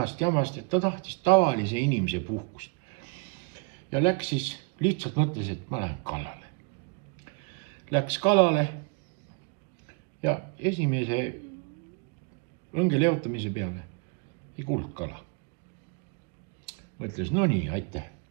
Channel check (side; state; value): left; quieter; 35.2 dB